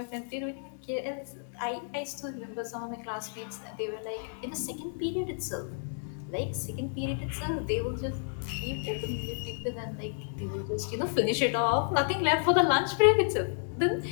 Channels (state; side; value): silent; right; digital silence